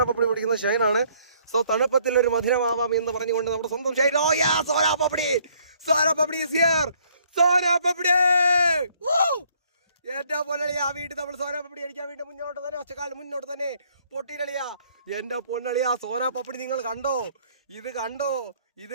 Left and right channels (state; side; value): inverted; both; correlation -0.64